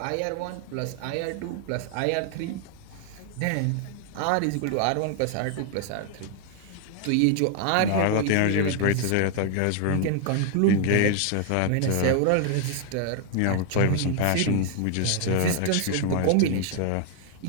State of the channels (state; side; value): different; both; correlation 0.00